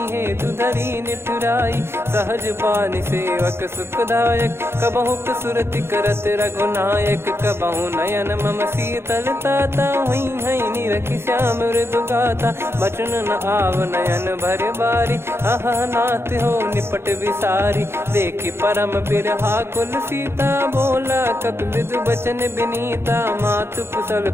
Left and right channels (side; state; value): left; late; 0.12 ms